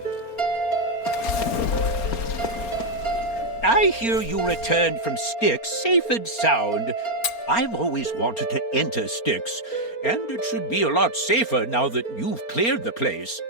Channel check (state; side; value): late; right; 4.3 ms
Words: I hear you returned from Styx safe and sound. I've always wanted to enter Styx, and it should be a lot safer now that you've cleared the place.